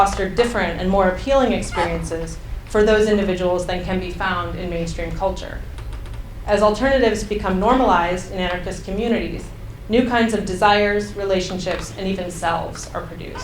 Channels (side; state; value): both; identical; correlation 1.00